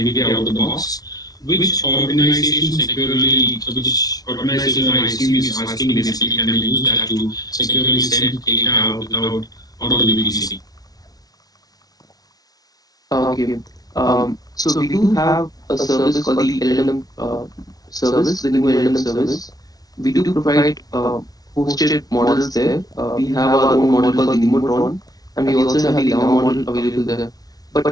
out of the box. Which organization I assume is asking basically can we use that to securely send data out of the VPC? Okay. So we do have a service called the LLM service, the new LLM service. We do provide hosted models there. We have our own model called the Nemotron, and we also have the Llama model available there.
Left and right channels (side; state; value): right; late; 0.18 ms